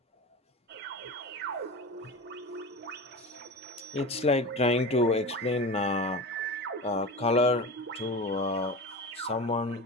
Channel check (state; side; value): normal; both; correlation 0.28